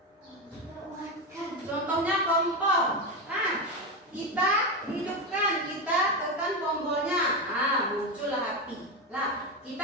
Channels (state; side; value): normal; both; correlation 0.14